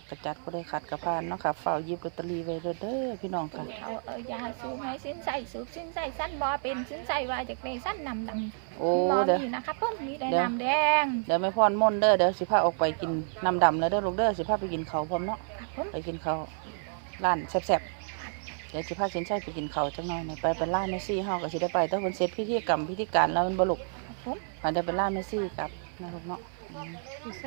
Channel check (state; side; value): silent; left; 58 dB below the other